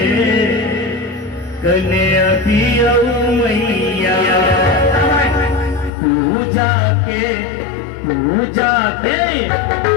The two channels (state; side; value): drops out; right; at 5.9 s